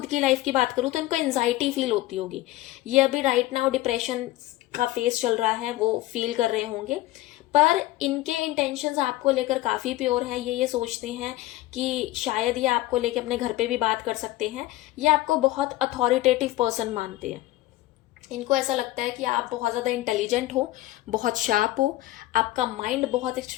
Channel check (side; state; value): right; quieter; 16.7 dB